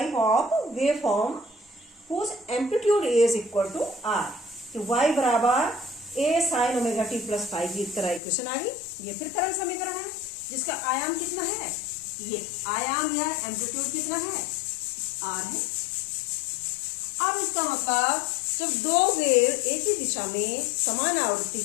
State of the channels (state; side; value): drops out; right; at 8.2 s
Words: of waveform whose amplitude is equal to r। तो y बराबर a sin omega t plus five की तरह equation आ गई। ये फिर तरल समीकरण है जिसका आयाम कितना है, ये आयाम या एम्पलीट्यूड कितना है, r है। अब इसका मतलब जब दो वेव एक ही दिशा में समान आवृत्ति